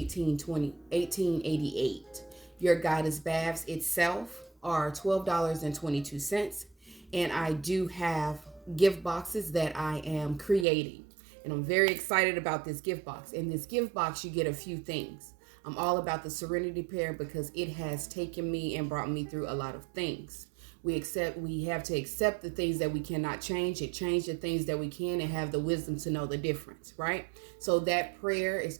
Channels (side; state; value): left; drops out; at 10.7 s